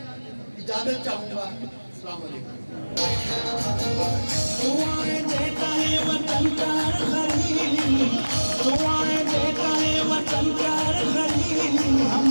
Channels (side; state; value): both; inverted; correlation -1.00